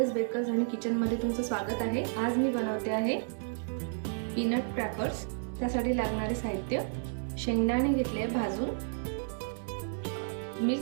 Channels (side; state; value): left; silent; digital silence